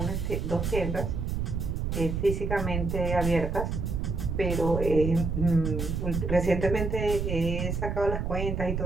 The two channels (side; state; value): right; noise; rumble, 2 dB below the sound